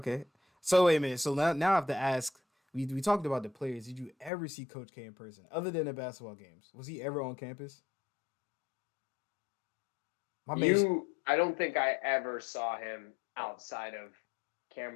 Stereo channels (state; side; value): drops out; right; at 4.3 s